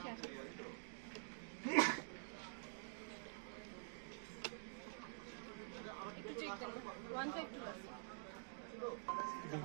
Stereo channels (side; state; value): left; silent; digital silence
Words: আসে একটু চেক করুন